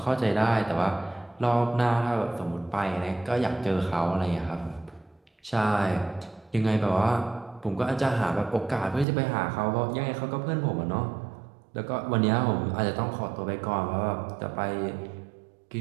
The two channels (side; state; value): left; drops out; at 9.1 s